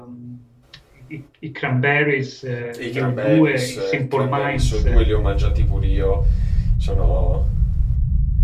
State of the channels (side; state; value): both; identical; correlation 1.00